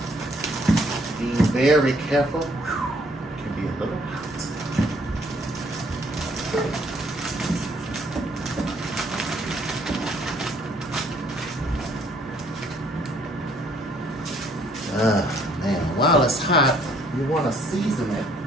Be very careful. It can be a little hot. Man, while it's hot, you want to season it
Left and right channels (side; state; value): both; normal; correlation 0.64